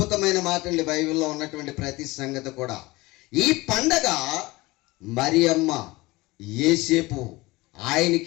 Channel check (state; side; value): quieter; right; 21.4 dB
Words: మాటలు బైబిల్లో ఉన్నటువంటి ప్రతి సంగతి కూడా. ఈ పండగ మరియమ్మ, యేసేపు